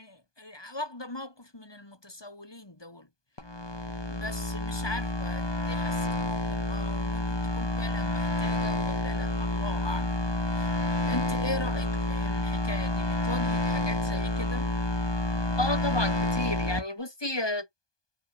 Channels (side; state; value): right; late; 1.2 ms